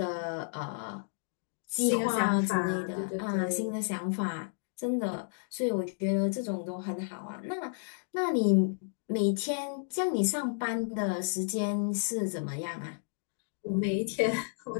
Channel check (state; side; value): silent; right; digital silence